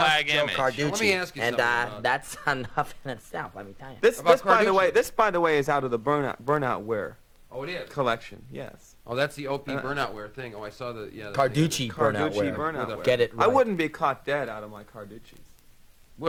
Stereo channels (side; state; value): both; identical; correlation 1.00